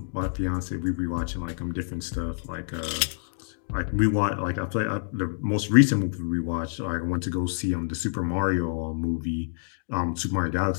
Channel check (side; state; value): right; silent; digital silence